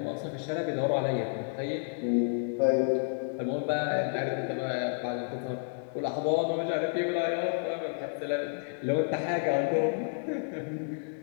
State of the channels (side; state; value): right; silent; digital silence